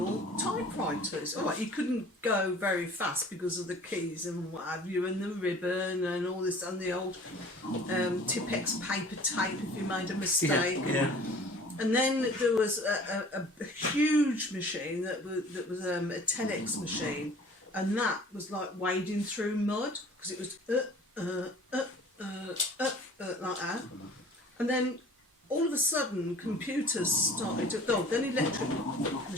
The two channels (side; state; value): both; normal; correlation 0.47